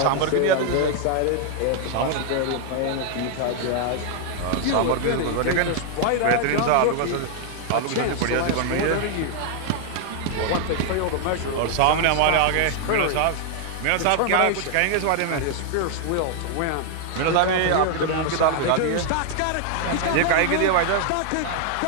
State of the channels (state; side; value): different; both; correlation 0.00